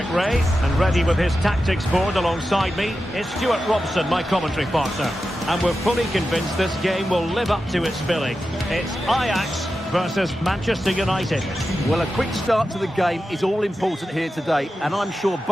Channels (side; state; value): both; normal; correlation 0.91